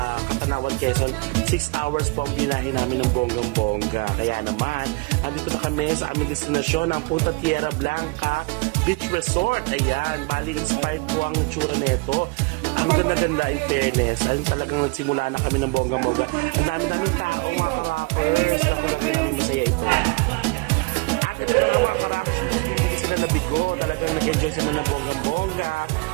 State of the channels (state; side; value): quieter; left; 27.4 dB